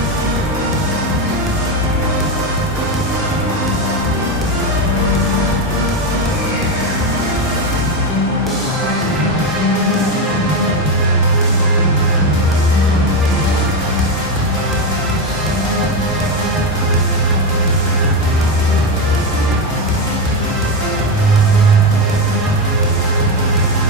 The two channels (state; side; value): normal; both; correlation 0.11